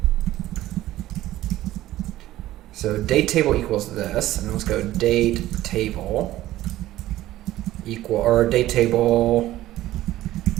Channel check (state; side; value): quieter; left; 15.1 dB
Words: So date table equals this, and let's go date table date table